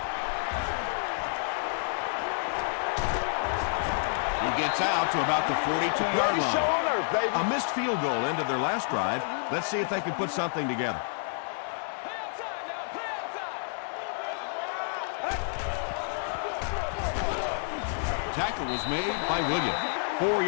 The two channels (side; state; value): right; silent; digital silence